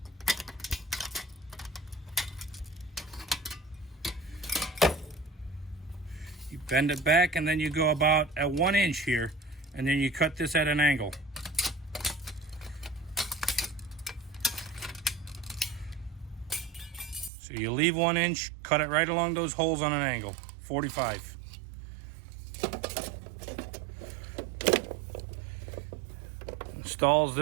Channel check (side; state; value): left; drops out; at 17.3 s